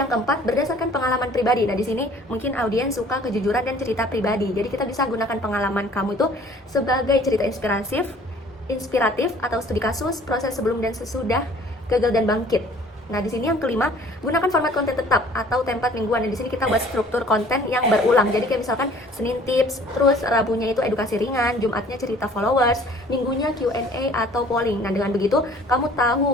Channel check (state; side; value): normal; both; correlation 0.53